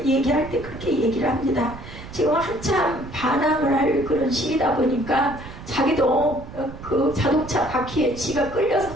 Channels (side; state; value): right; noise; rumble, 14 dB below the sound